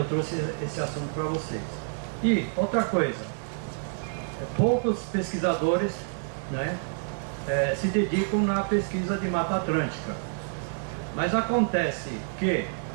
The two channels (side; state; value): left; silent; digital silence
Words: trouxe esse assunto para vocês. E outra coisa, poucos pesquisadores, né, se dedicam na pesquisa de Mata Atlântica. Mas acontece que